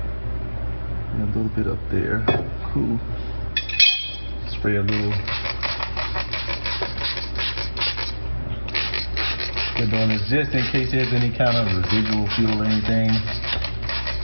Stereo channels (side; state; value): both; inverted; correlation -1.00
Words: And a little bit up there. Cool. Spray a little. We're doing this just in case there's any kind of residual fuel or anything.